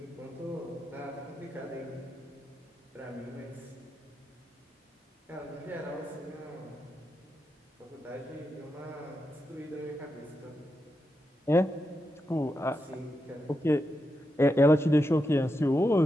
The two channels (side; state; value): both; normal; correlation 0.87